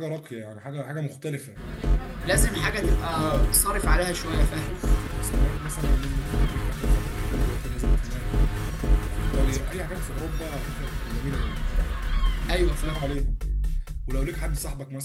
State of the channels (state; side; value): identical; both; correlation 1.00